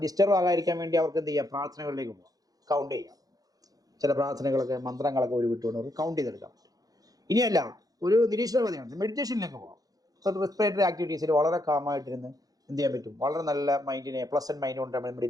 ഡിസ്റ്റർബ് ആകാതിരിക്കാൻ വേണ്ടി അവർക്ക് എന്ത് ചെയ്യാം, പ്രാർത്ഥനകളിലേക്ക് പോകാം, കൗണ്ട് ചെയ്യാം. ചില പ്രാർത്ഥനകളൊക്കെ മന്ത്രങ്ങളൊക്കെ വിട്ടുകൊണ്ട് അവർക്ക് കൗണ്ട് ചെയ്തെടുക്കാൻ പറ്റും. ഇനിയല്ല, ഒരു നിരീക്ഷണവാദിയാണ്, മെഡിറ്റേഷനിലേക്ക് പോകാം. റെസ്പിറേറ്ററി ആക്ടിവിറ്റീസിൽ വളരെ കാമായിട്ടിരുന്ന് എന്ത് ചെയ്യാൻ പറ്റും, വളരെ നല്ല മൈൻഡിനെ പ്ലസന്റ് മൈൻഡ് കൊണ്ട്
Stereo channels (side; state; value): left; late; 0.18 ms